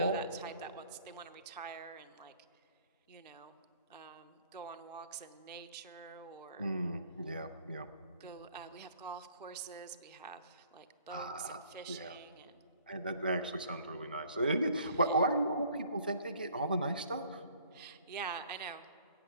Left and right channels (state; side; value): inverted; both; correlation -0.57